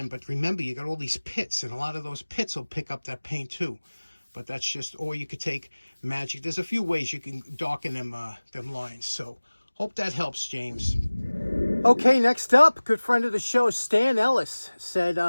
But remember, you got all these pits, and a lot of those pits will pick up that paint too. But that's just, or you could take magic. There's a few ways you can darken them lines. So hope that helps, James. Okay, next up, good friend of the show, Stan Ellis, said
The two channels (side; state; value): both; inverted; correlation -1.00